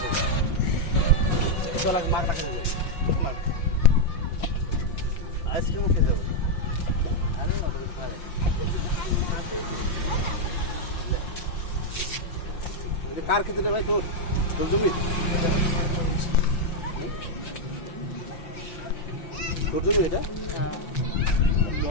চল এক মার টাকা দেবে, কত মার আইসক্রিম খেয়ে যাবো। আরে না তো খায় কার খেতে রে ভাই, তোর তোর জমি এটা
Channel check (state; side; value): late; right; 5.7 ms